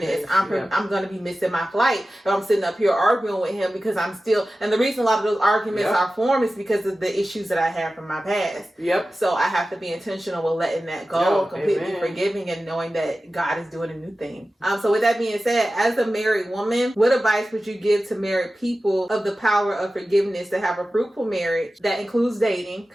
I'm going to be missing my flight if I'm sitting up here arguing with him, because I'm still, and the reason a lot of those arguments are formed is because of the issues that I have from my past. So I have to be intentional with letting that go, completely forgiving and knowing that God is doing a new thing. So with that being said, as a married woman, what advice would you give to married people of the power of forgiveness to have a fruitful marriage that includes dating?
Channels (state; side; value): normal; both; correlation 0.95